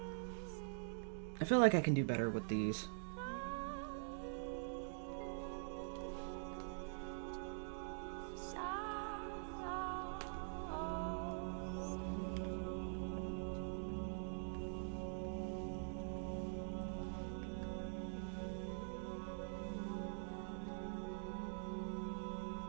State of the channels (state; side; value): silent; left; digital silence